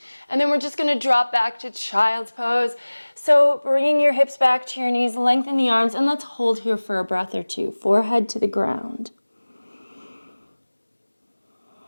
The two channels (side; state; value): both; inverted; correlation -1.00